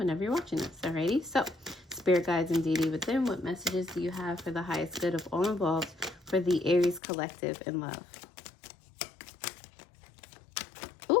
you're watching this. Alrighty. So, spirit guides and deity within, what messages do you have for the highest good of all involved for the Aries collective in love?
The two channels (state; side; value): drops out; right; at 7.0 s